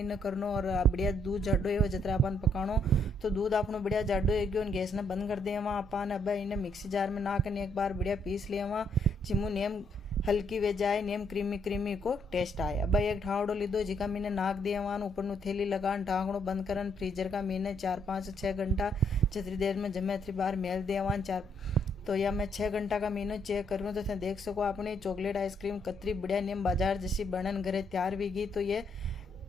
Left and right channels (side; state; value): both; normal; correlation 0.72